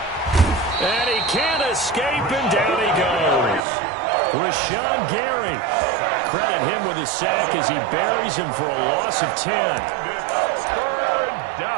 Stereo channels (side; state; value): left; drops out; at 3.6 s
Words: Escape, and down he goes. Rashawn Gary. Credit him with a sack as he buries him for a loss of 10. Third